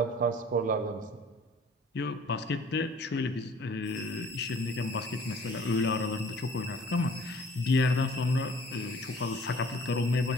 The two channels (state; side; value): normal; both; correlation 0.52